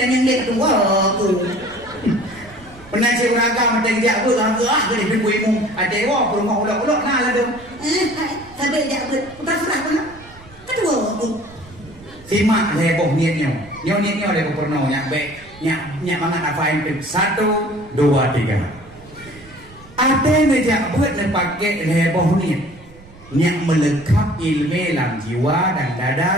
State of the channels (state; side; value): noise; right; rumble, 22 dB below the sound